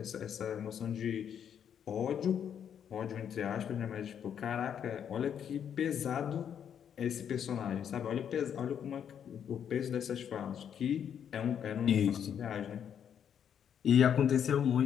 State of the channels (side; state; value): right; quieter; 8.6 dB